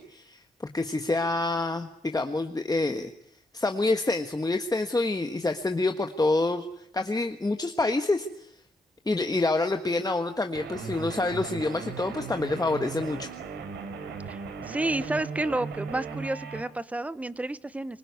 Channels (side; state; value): both; normal; correlation 0.78